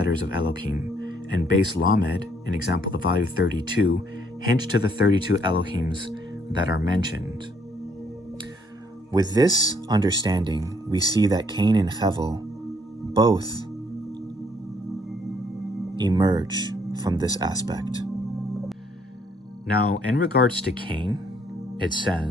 of Elohim, and Beis Lamed, an example, the value 32, hints to the 32 Elohims that are mentioned. With this understanding, we see that Cain and Hevel both emerge from this aspect. Now, in regards to Cain, it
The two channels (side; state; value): both; normal; correlation 0.67